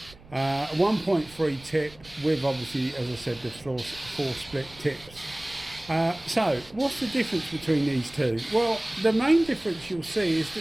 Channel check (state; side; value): noise; right; rumble, 22 dB below the sound